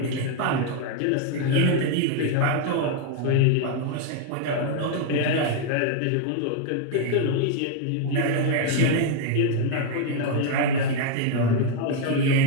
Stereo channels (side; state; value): both; different; correlation 0.00